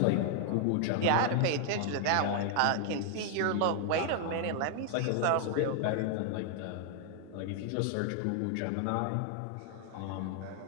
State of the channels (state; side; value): different; both; correlation 0.00